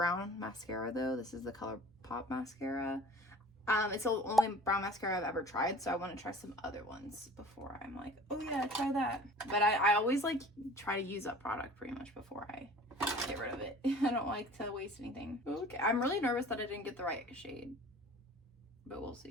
mascara though. This is the ColourPop mascara. It's the only brown mascara I've ever tried, so I want to try some other ones before I'm like, oh yeah, try that. But I always like try to use up product pretty much before I get rid of it. I don't like to waste anything. Okay, I'm really nervous that I didn't get the right shade, but we'll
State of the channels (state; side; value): normal; both; correlation 0.45